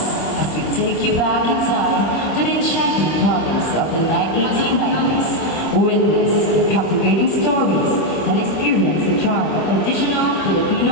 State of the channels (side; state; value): right; late; 26 ms